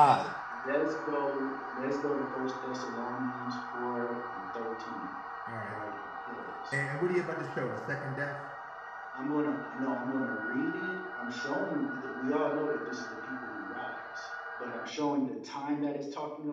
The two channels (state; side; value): identical; both; correlation 1.00